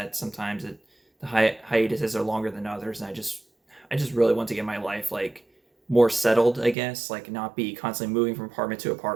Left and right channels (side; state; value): left; drops out; at 6.8 s